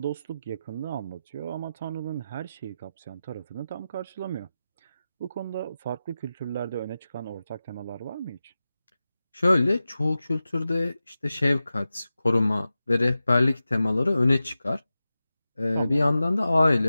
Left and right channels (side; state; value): both; inverted; correlation -0.93